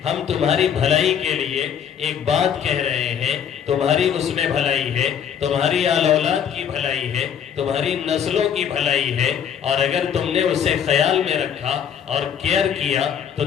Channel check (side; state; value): right; quieter; 8.4 dB